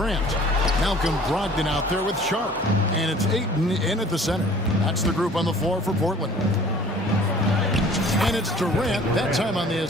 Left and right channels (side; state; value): both; normal; correlation 0.50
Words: Malcolm Brogdon out there with Sharp. And it's Ayton in at the center. That's the group on the floor for Portland. And it's Durant, that time on the